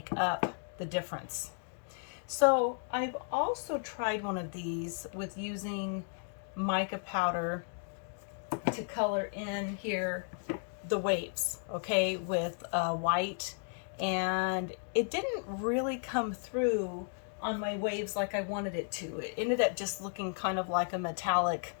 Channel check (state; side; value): silent; right; 55 dB below the other